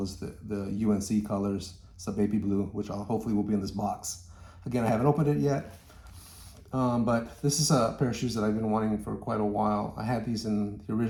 as the UNC colors. It's the baby blue, which hopefully will be in this box. Again, I haven't opened it yet. But this is a pair of shoes that I've been wanting for quite a while. I had these in the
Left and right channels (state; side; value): identical; both; correlation 1.00